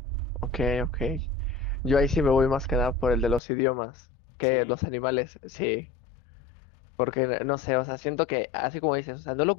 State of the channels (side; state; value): right; drops out; at 3.4 s